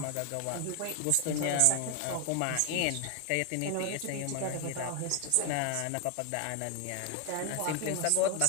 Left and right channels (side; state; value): both; different; correlation 0.01